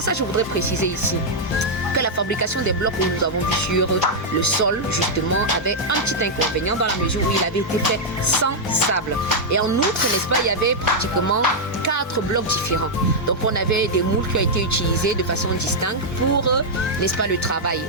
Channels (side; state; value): both; normal; correlation -0.04